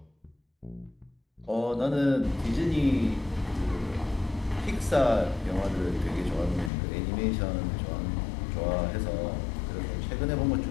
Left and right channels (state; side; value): drops out; right; at 6.7 s